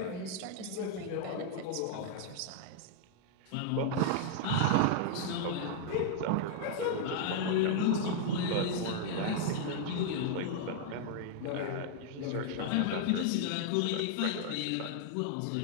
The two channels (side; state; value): both; different; correlation -0.01